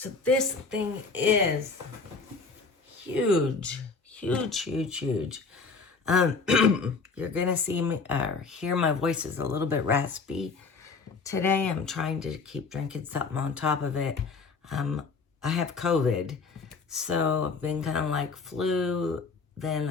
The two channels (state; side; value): quieter; right; 4.5 dB